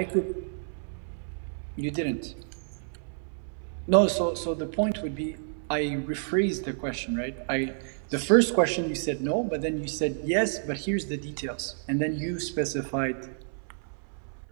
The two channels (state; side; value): silent; left; 58 dB below the other